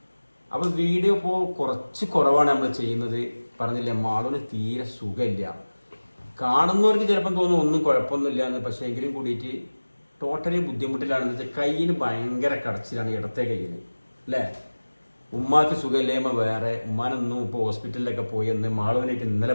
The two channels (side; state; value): both; inverted; correlation -1.00